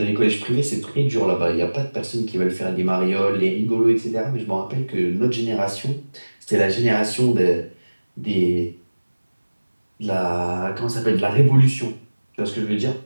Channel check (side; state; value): both; inverted; correlation -1.00